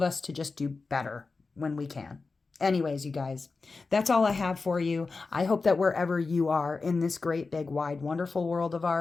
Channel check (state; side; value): quieter; right; 4.1 dB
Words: us to just do better when we can. Anyways, you guys, that's all I have for you. I hope that wherever you are in this great, big, wide, wonderful world of